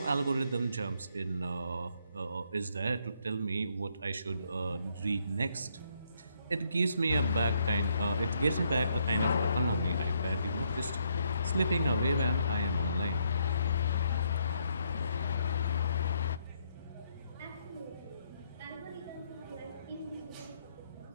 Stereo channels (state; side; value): inverted; both; correlation -0.72